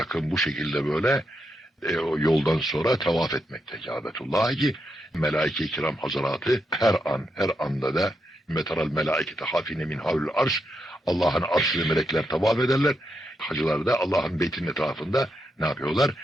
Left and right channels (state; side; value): normal; both; correlation 0.82